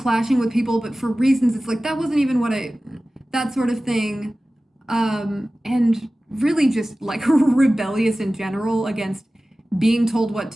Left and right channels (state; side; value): normal; both; correlation 0.96